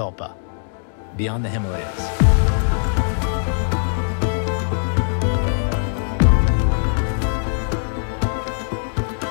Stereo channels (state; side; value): silent; right; digital silence